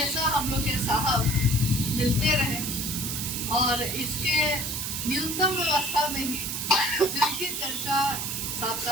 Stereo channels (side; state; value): right; noise; hiss, 3 dB below the sound